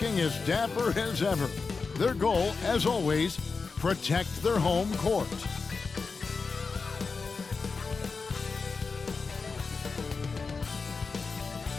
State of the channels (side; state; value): right; quieter; 4.6 dB